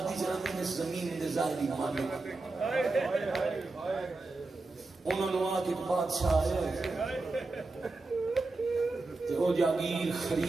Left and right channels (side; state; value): left; quieter; 3.4 dB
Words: جنہیں اس زمین دے ظاہری مالک انہوں نے وہاں کے بادشاہ آئے تے وہ جاگیر